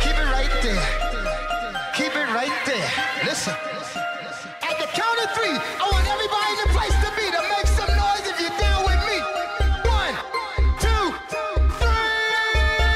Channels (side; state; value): both; identical; correlation 1.00